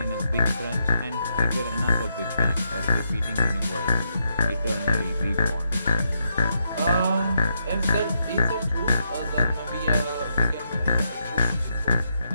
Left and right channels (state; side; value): inverted; both; correlation -0.79